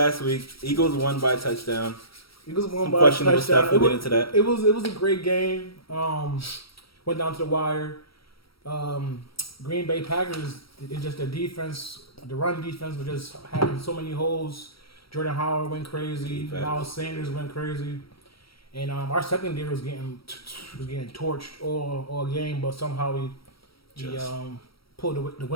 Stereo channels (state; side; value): late; right; 0.75 ms